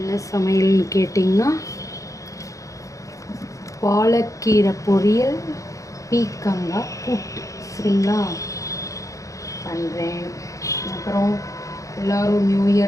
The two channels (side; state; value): right; late; 0.16 ms